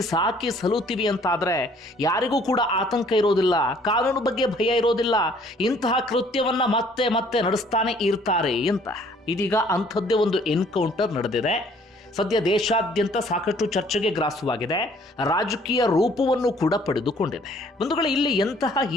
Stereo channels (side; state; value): both; normal; correlation 0.59